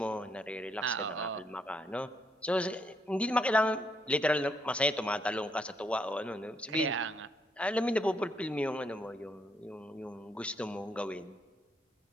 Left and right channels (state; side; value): normal; both; correlation 0.74